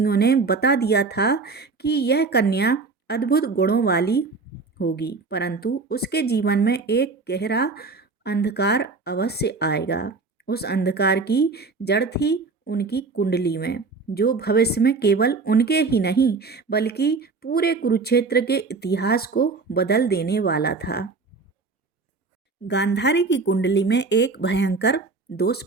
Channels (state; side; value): quieter; left; 4.2 dB